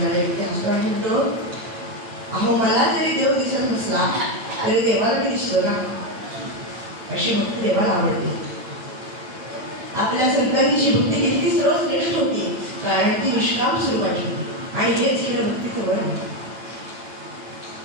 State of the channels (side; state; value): left; late; 9.0 ms